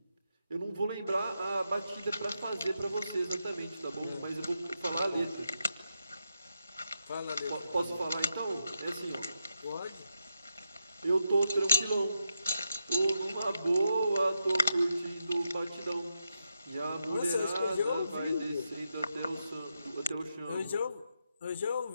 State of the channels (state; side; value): inverted; both; correlation -0.84